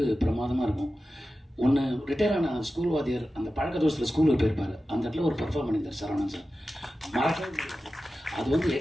பிரமாதமாக இருக்கும். ஒன்று, ரிட்டையர் ஆன ஸ்கூல் வாத்தியார் அந்த பழக்க தோசத்தில் ஸ்கூலுக்கு போயிருப்பாரு, அந்த இடத்துல ஒரு பெர்ஃபார்ம் பண்ணியிருந்தார் சரவணன் சார், மறக்கவே முடியாது. அது வந்து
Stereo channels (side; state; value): both; normal; correlation 0.94